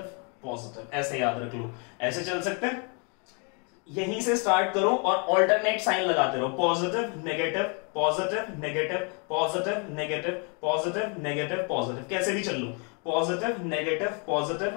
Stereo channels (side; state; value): right; quieter; 36.0 dB